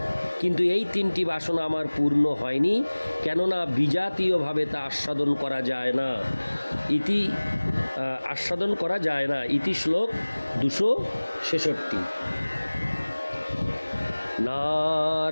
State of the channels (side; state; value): both; inverted; correlation -1.00